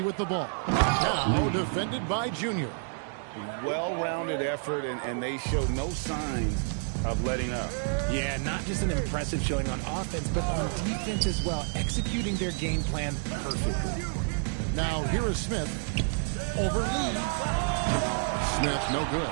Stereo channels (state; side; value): silent; left; 58 dB below the other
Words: with the ball. Now defended by Junior. Well-rounded effort, and they show no signs of letting up. Yeah, not just an impressive showing on offense, but on defense as well, executing their game plan perfectly. Now here is Smith. Over Lee. Smith, no good.